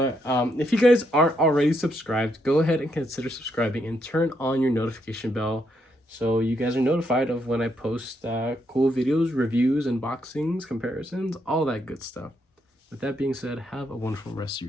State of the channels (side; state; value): both; normal; correlation 0.77